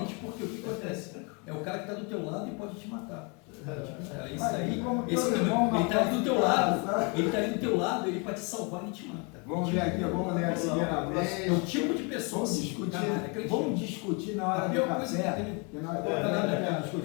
porque o que acontece? É o cara que está do teu lado e pode te matar. Isso aí, ele está ali do teu lado, ele pode te salvar e te mata. Vamos ver aqui, vamos ler a primeira vez. É o tipo de pessoa vamos discutir na hora do café.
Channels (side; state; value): right; quieter; 32.5 dB